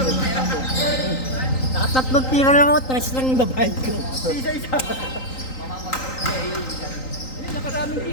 Nakatatlong tira lang ako, tres lang yung babayad ko. Isa-isa. Hindi, nakaraming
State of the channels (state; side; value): late; right; 3.9 ms